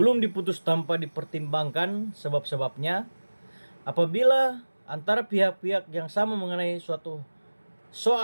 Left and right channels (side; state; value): both; inverted; correlation -1.00